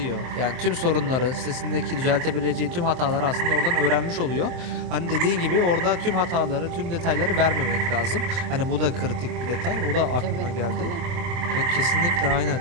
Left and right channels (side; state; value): left; late; 23 ms